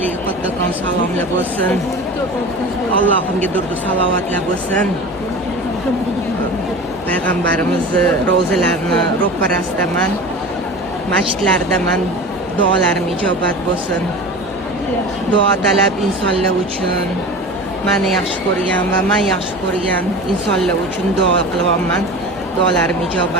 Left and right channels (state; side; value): normal; both; correlation 0.34